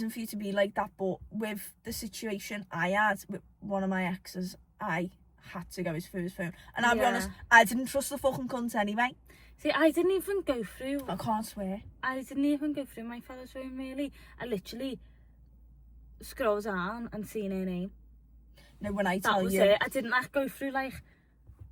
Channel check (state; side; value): identical; both; correlation 1.00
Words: for you to be like that. But with the situation I had with one of my exes, I had to go through his phone. And I'll be honest, I didn't trust the fucking cunt anyway. See, I didn't even go through. I can't swear. I didn't even go through my fella's phone, really. I literally scrolled down and seen her name. No, when I tell you. That was it. I didn't like go through like